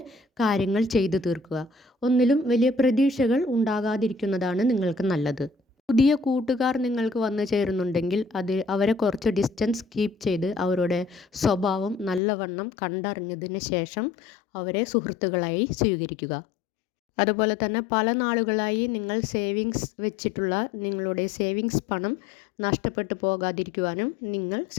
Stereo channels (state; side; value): drops out; right; at 12.2 s